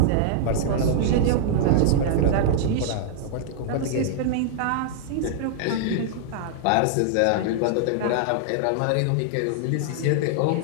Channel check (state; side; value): different; both; correlation -0.01